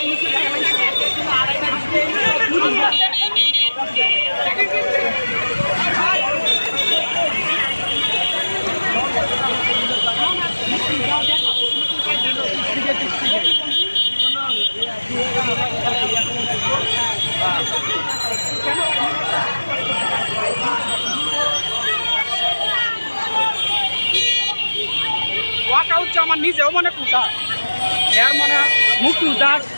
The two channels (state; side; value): inverted; both; correlation -1.00